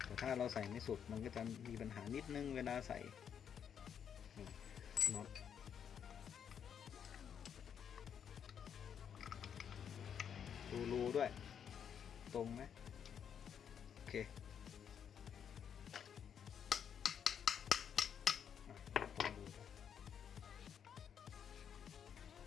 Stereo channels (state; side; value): quieter; right; 8.1 dB